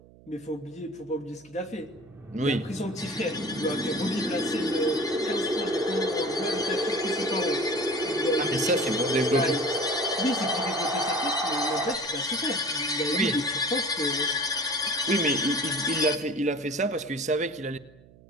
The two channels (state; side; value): noise; right; hum, 24 dB below the sound